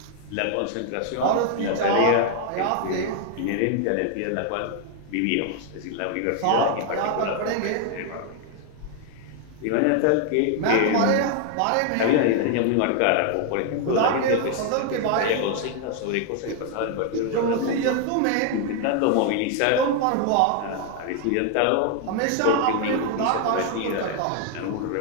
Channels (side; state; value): both; different; correlation 0.00